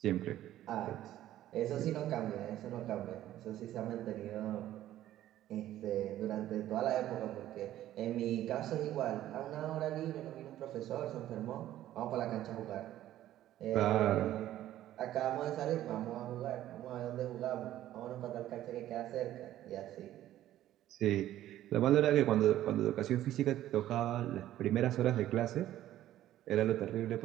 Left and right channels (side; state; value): left; quieter; 13.3 dB